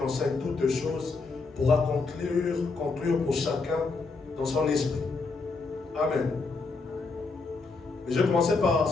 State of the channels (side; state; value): right; quieter; 4.1 dB